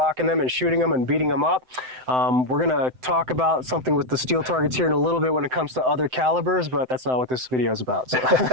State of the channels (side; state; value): left; late; 7.8 ms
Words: them and shooting them and beating them up. We're gonna talk about something with the steel targets here in a little bit when it comes to other calibers, but that's not what this video is about. So.